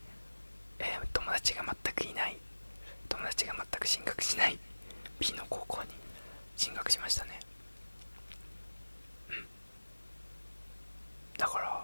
友達が全く進学しない B の高校に進学しましたね。だか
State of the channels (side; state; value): both; inverted; correlation -1.00